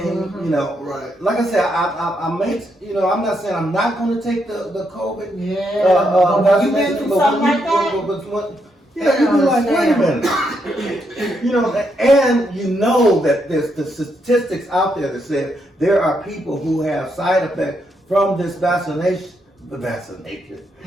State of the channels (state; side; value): normal; both; correlation 0.78